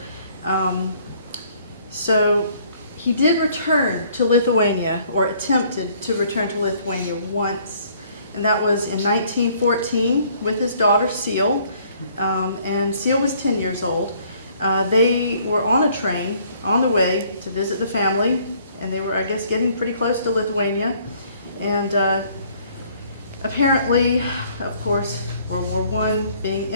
So he did return to Lithuania, or attempted to return to Lithuania once, and that was in 1914 with his daughter Seal, and Seal was 10 years old. They were on a train on the way to visit the family, and they were, I guess, getting pretty close to Lithuania. And apparently, of course, World War I being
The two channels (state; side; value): inverted; both; correlation -0.61